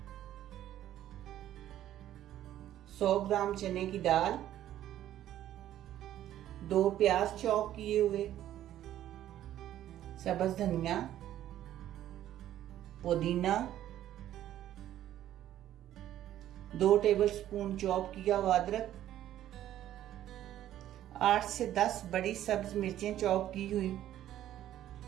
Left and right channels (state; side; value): quieter; left; 12.3 dB